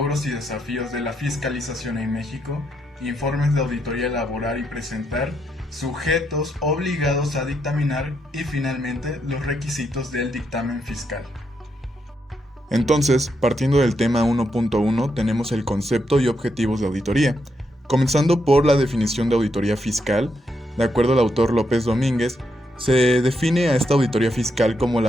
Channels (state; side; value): normal; both; correlation 0.80